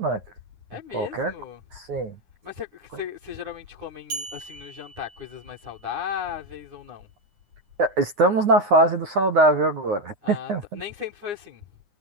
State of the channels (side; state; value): left; late; 9.8 ms